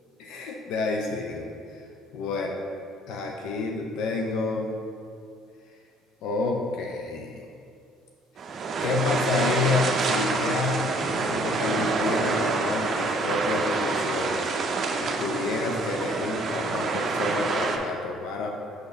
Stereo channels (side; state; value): both; normal; correlation 0.59